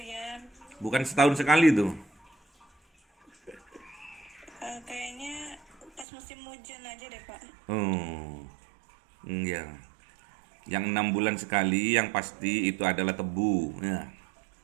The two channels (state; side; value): drops out; left; at 6.1 s